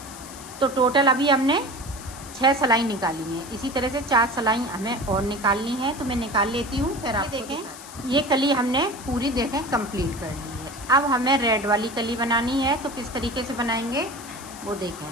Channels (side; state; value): left; noise; hiss, 15 dB below the sound